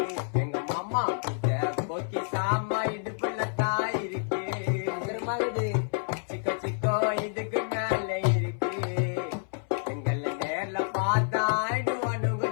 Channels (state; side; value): silent; right; 59 dB below the other